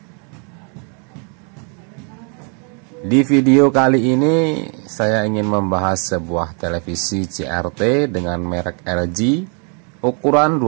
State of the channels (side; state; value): left; quieter; 38.4 dB